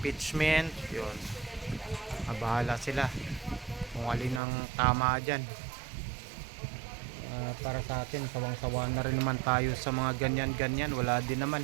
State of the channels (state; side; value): drops out; left; at 4.4 s